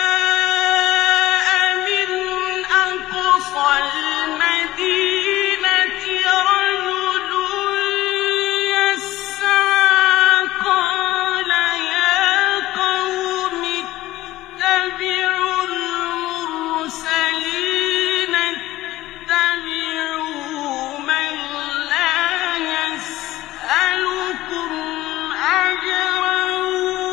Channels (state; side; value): quieter; right; 16.5 dB